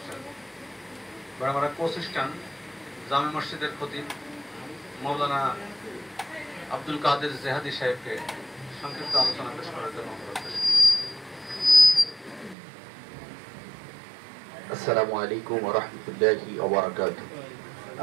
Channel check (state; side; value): drops out; left; at 12.6 s